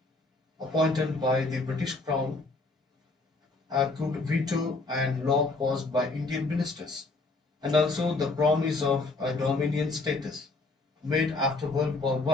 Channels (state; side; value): quieter; right; 3.4 dB